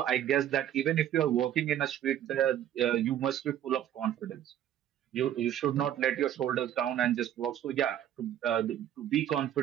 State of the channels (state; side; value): quieter; left; 11.1 dB